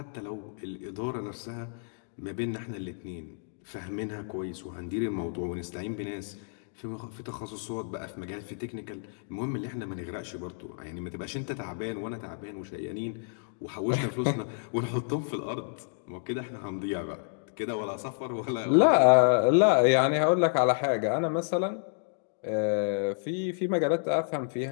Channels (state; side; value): silent; right; digital silence